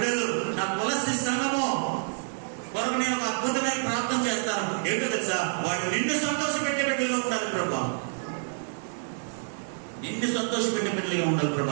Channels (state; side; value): silent; left; digital silence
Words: నా తులసి సంఘము కొరకు నేను ఒక అద్భుతమైన ప్రార్థన చేస్తాను. ఏంటో తెలుసా? వాడు నిన్ను సంతోషపెట్టే బిడ్డలుగా ఉండాలి ప్రభా, నిన్ను సంతోషపెట్టే బిడ్డలుగా ఉండాలి